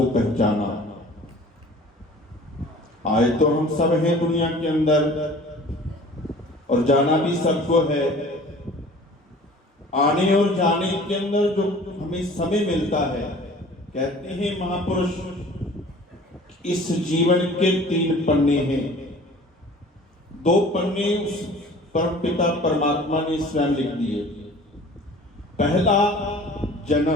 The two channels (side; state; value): both; normal; correlation 0.46